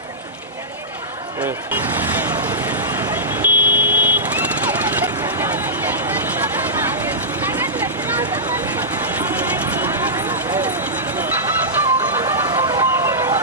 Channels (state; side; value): normal; both; correlation -0.14